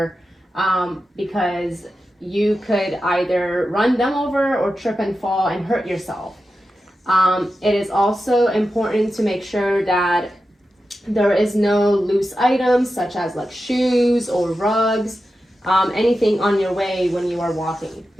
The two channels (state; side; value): normal; both; correlation 0.91